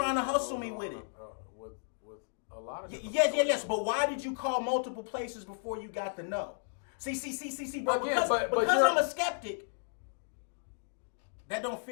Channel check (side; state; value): right; silent; digital silence